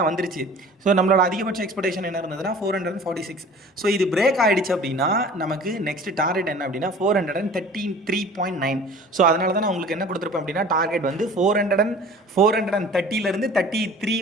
வந்துருச்சு. ஸோ நம்மளோட அதிகபட்ச எக்ஸ்பெக்டேஷன் என்ன இருந்ததுன்னா 446. ஸோ இது பிரேக் ஆகிடுச்சு அப்படின்னா நமக்கு நெக்ஸ்ட் டார்கெட் என்ன அப்படின்னா 433.9. ஸோ அதனால தான் நான் உங்களுக்கு என்ன கொடுத்துருப்பேன் அப்படின்னா, டார்கெட் வந்து 430லேருந்து 33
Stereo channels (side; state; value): both; normal; correlation 0.45